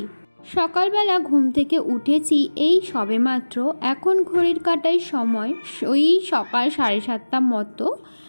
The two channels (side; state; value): both; inverted; correlation -1.00